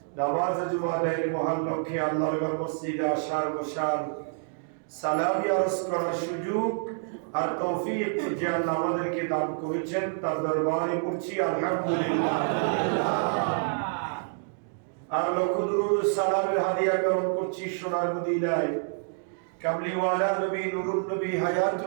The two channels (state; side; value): silent; left; digital silence